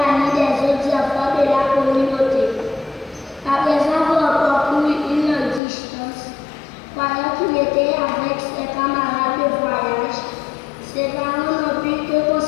des autres enfants de la communauté. Après avoir parcouru une longue distance, croyant qu'il était avec ses camarades de voyage, ses parents n'ont pu que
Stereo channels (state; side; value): drops out; right; at 5.6 s